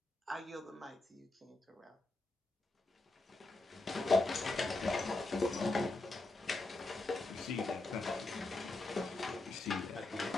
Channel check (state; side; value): quieter; right; 3.0 dB